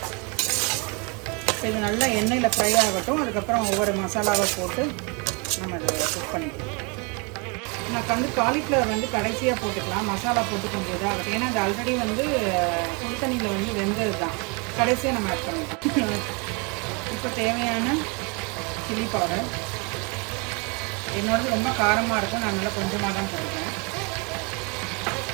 இது நல்லா எண்ணெயில் ஃப்ரை ஆகட்டும். அதுக்கப்புறம் ஒவ்வொரு மசாலாவை போட்டு நம்ம அதை குக் பண்ணிக்கலாம். நான் வந்து காலிஃப்ளவர் வந்து கடைசியாக போட்டுக்கலாம், மசாலா போட்டு கொஞ்சம் இதாகட்டும். ஏன்னா அது ஆல்ரெடி வந்து சுடு தண்ணியில் வந்து வெந்தது தான், கடைசியாக நம்ம ஆட் பண்ணிக்கலாம். இப்போ தேவையான சில்லி பவுடர். என்னோடது ரொம்ப காரமாக இருக்கும், நான் நல்லா கொஞ்சமாக தான் போட்டுக்கிறேன்.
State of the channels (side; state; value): left; quieter; 32.1 dB